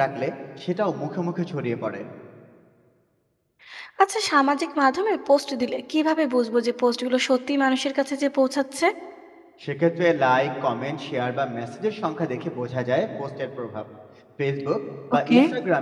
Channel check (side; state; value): both; identical; correlation 1.00